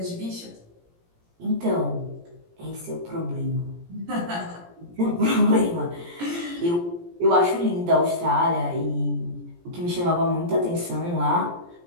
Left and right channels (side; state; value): left; late; 17 ms